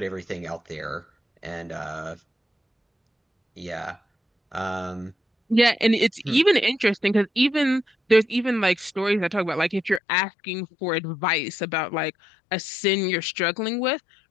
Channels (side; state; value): right; drops out; at 10.0 s